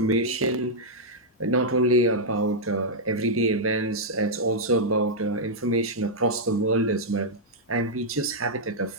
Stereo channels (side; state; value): both; normal; correlation -0.06